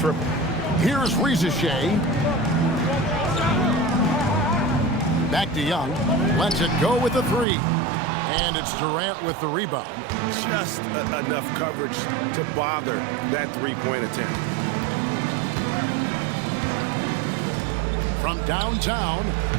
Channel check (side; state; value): left; drops out; at 7.5 s